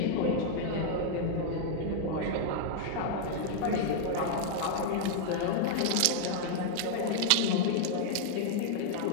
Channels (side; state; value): both; different; correlation -0.01